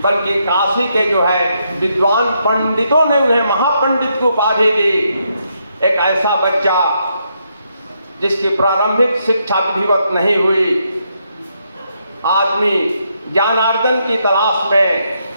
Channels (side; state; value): both; inverted; correlation -0.78